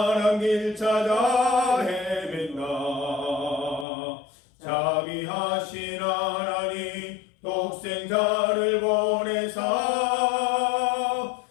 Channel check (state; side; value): drops out; right; at 3.9 s